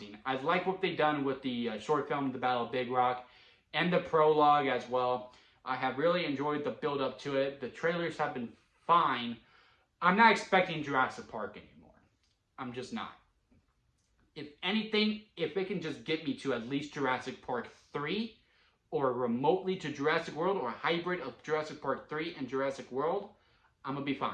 I like what they've done with the short film, The Battle of Big Rock, and the prologue as well. I have really enjoyed the build-up to it. The trailers have been fine. I'm not expecting Jurassic Park anymore. I'm just not. If anything, if it can just get me to at least Jurassic Park 3, or remotely to Jurassic World, or a hybrid of Jurassic Park 3 and Jurassic World, I'm gonna be fine.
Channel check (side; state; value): both; identical; correlation 1.00